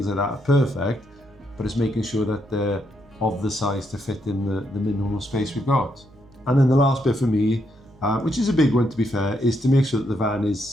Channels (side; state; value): right; noise; hum, 26 dB below the sound